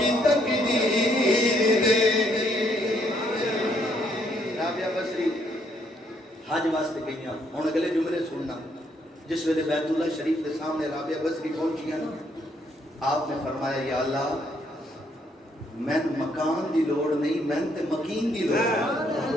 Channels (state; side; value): normal; both; correlation 0.70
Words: تقدیر دیکھی. رابعہ بصری حج واسطے گئیاں. ہن اگلے جملے سننا. جس ویلے بیت اللہ شریف کے سامنے رابعہ بصری پہنچیاں نا, آپ نے فرمایا یا اللہ میں مکان دی لوڑ نہیں, میں تے مکین دی لوڑ.